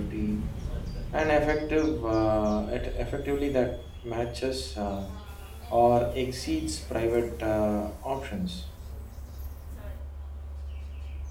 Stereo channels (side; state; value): both; identical; correlation 1.00